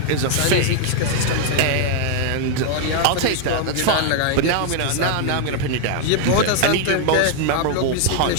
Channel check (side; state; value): both; different; correlation 0.00